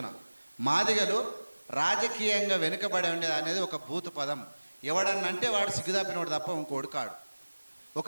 మాదిగలు రాజకీయంగా వెనుకబడి ఉండేది అనేది ఒక బూతు పదం. ఎవడన్నంటే వాడు సిగ్గుదాపినోడు తప్ప ఇంకోటి కాడు.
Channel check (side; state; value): both; inverted; correlation -1.00